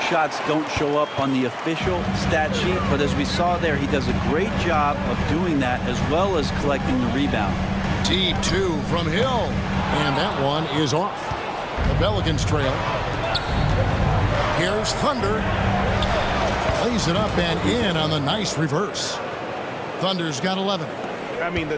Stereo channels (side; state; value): both; identical; correlation 1.00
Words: shots don't show up on the official stat sheet, but as we saw there, he does a great job of doing that as well as collecting the rebound. Deep 2 from Hill. And that one is off. The Pelicans trail. Here's Thunder. Lays it up and in on the nice reverse. Thunder's got 11. I mean, the